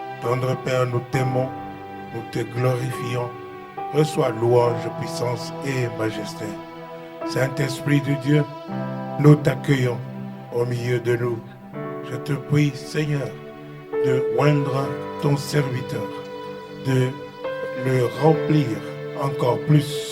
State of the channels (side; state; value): both; identical; correlation 1.00